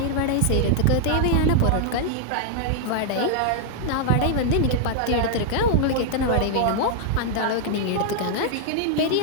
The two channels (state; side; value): different; both; correlation 0.00